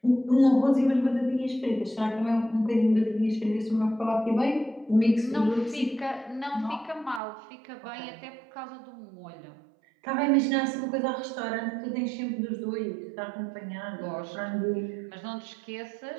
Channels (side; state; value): left; drops out; at 7.2 s